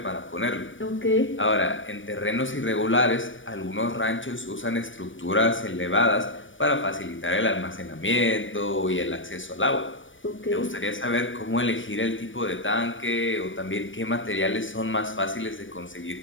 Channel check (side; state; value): right; late; 0.56 ms